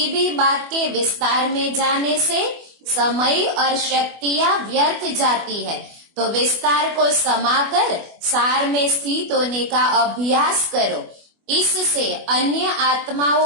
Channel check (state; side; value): late; left; 24 ms